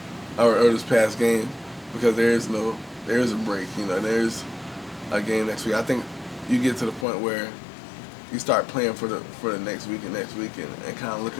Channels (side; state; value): right; drops out; at 7.1 s